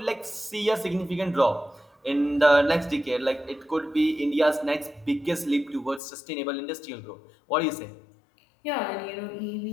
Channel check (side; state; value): right; drops out; at 6.0 s